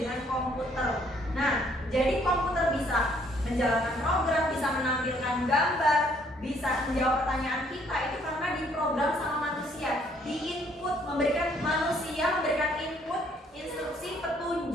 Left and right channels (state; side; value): normal; both; correlation 0.65